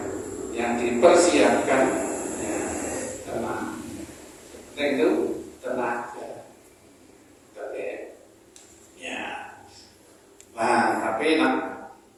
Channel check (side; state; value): both; identical; correlation 1.00